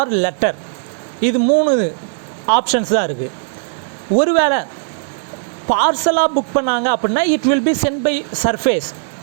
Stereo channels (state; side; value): silent; left; digital silence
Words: letter. இது 3 ஆப்ஷன்ஸ் தான் இருக்குது. ஒருவேளை பார்சலாக புக் பண்ணாங்க அப்படின்னா it will be sent by surface